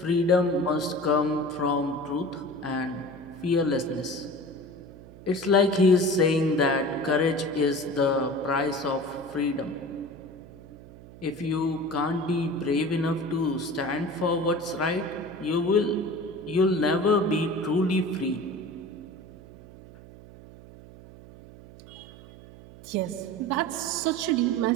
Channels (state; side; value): noise; right; hum, 19 dB below the sound